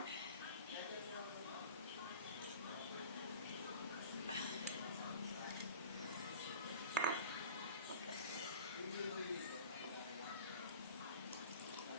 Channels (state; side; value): inverted; both; correlation -0.42